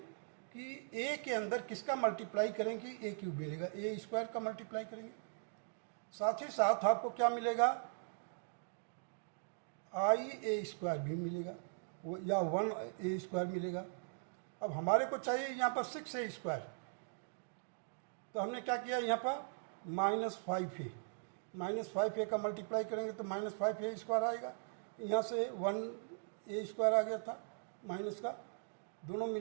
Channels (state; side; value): silent; left; digital silence